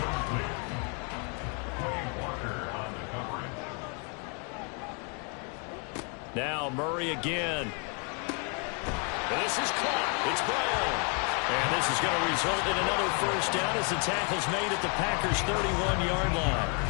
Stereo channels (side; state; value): right; quieter; 37.0 dB